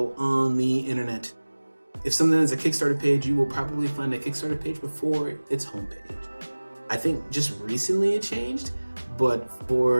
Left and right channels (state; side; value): inverted; both; correlation -1.00